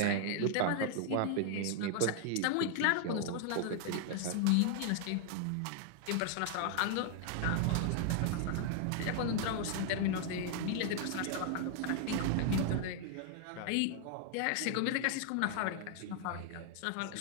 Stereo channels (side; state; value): both; different; correlation 0.00